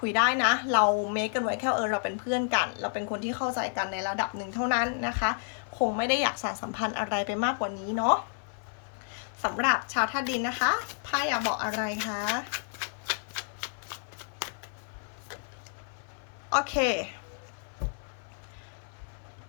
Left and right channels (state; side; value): silent; right; 58 dB below the other